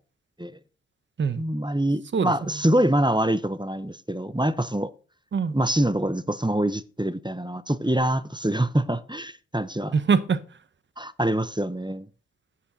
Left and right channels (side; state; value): both; normal; correlation 0.78